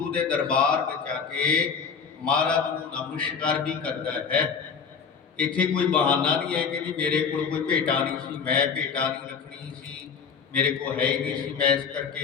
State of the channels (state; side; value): quieter; right; 6.2 dB